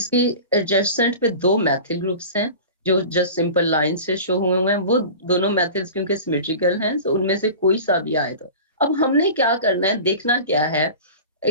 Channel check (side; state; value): both; inverted; correlation -0.36